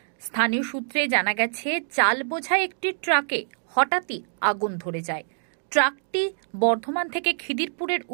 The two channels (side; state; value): left; silent; digital silence